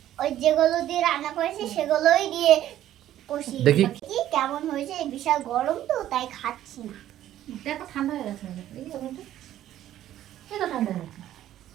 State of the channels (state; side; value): quieter; left; 12.5 dB